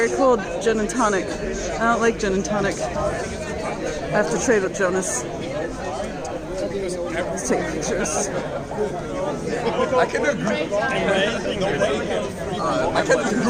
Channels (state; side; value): identical; both; correlation 1.00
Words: cold gin and tonic. I don't like gin and tonic. I have to trade with Jonas. Let's take pictures. I can do a group. I can do a